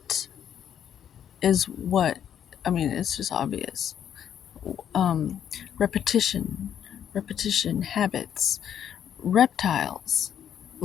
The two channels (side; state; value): right; quieter; 9.3 dB